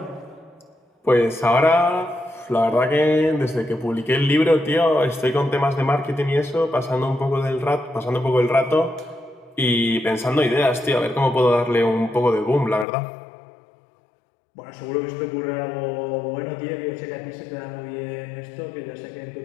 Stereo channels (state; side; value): drops out; right; at 12.9 s